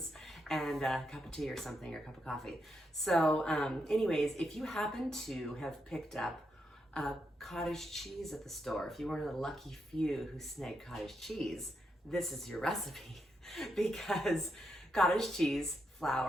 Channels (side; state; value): both; normal; correlation 0.82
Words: and a cup of tea or something, or a cup of coffee. So anyways, if you happen to have picked up cottage cheese at the store, if you were one of the lucky few who snagged cottage cheese, this is your recipe. Because cottage cheese,